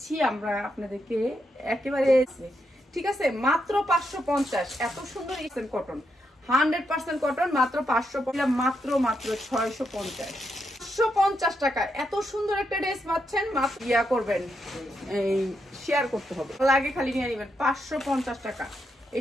আমরা আপনাদেরকে একেবারে। ঠিক আছে, মাত্র 550। এত সুন্দর ইসেন কটন, 100% কটন, মাত্র 550, মাত্র মাত্র 650। 550 টাকা এত সুন্দর একটা ড্রেস পাচ্ছেন। মাত্র ইয়া করবেন, এই শেয়ার করতে হবে, লাগে খালি নিয়ে নেবেন। 550 টাকা।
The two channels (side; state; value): both; normal; correlation 0.81